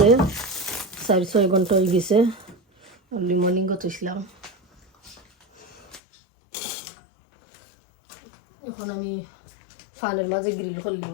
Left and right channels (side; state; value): right; drops out; at 6.0 s